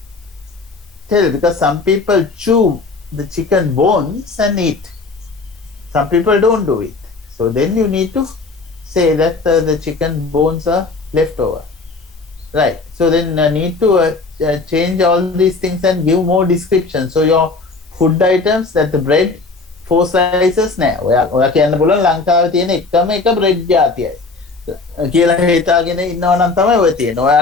tell because some people chew the chicken bones and eat. Some people don't do it. So then you need to say that the chicken bones are left over. Right. So then need to change all these things and give more description. So your food items, that the bread 4 slices නෑ. ඔයා කියන්න පුළුවන් ලංකාවේ තියෙන එකම එක bread ජාතියයි. කියලා හිතාගෙන ඉන්නවා නම් තමයි ඔය තියෙන්නේ.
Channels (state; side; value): quieter; right; 3.9 dB